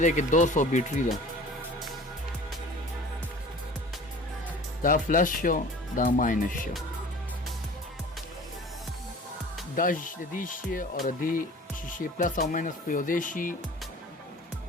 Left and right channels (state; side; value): normal; both; correlation 0.43